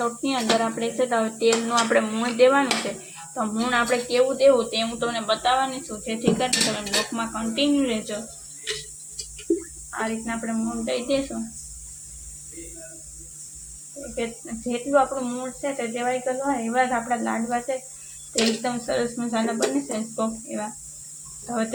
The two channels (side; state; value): both; identical; correlation 1.00